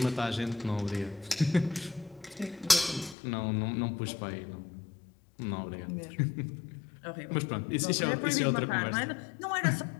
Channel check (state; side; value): drops out; right; at 3.2 s